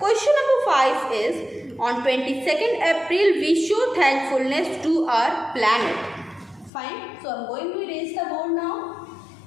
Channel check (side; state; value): right; drops out; at 6.7 s